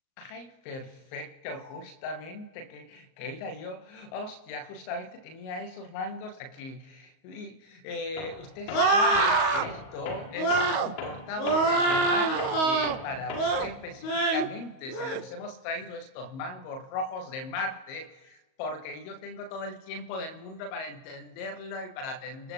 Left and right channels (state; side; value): late; right; 38 ms